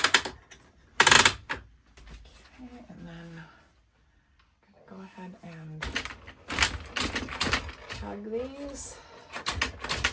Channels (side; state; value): both; identical; correlation 1.00